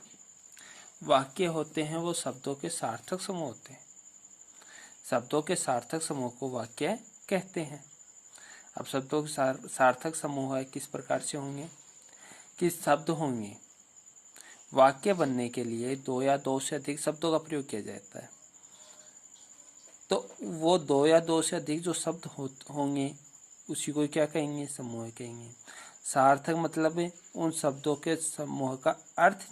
वाक्य होते हैं वो शब्दों के सार्थक समूह होते हैं। शब्दों के सार्थक समूह को वाक्य कहते हैं। अब शब्दों के सार्थक समूह है किस प्रकार से होंगे, किस शब्द होंगे। वाक्य बनने के लिए दो या दो से अधिक शब्दों का प्रयोग किया जाता है। तो वो दो या दो से अधिक जो शब्द होंगे उसी को क्या कहेंगे, समूह कहेंगे। सार्थक मतलब है उन शब्दों के समूह का अर्थ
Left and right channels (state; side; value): identical; both; correlation 1.00